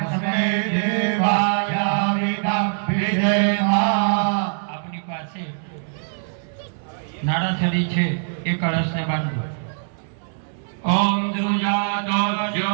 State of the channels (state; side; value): silent; left; 64 dB below the other